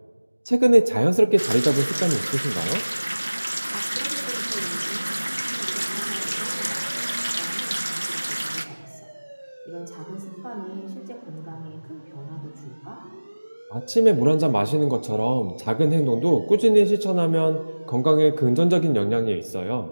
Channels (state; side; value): inverted; both; correlation -1.00